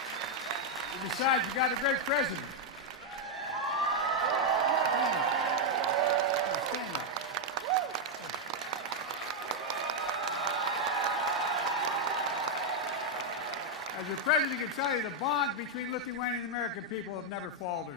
And besides, you got a great president. As the president can tell you, the bond between Lithuanian and American people have never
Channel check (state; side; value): normal; both; correlation 0.00